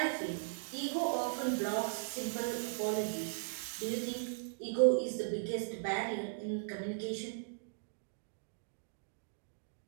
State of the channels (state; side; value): silent; left; digital silence